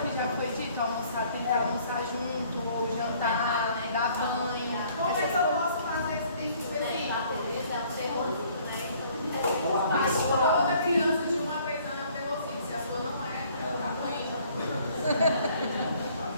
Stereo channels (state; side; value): inverted; both; correlation -0.59